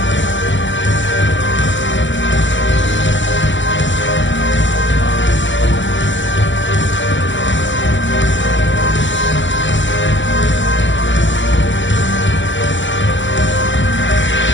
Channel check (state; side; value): late; right; 0.54 ms